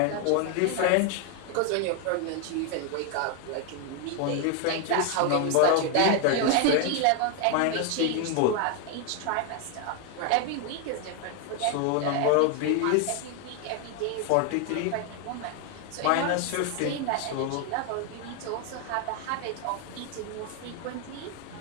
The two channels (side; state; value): both; different; correlation 0.01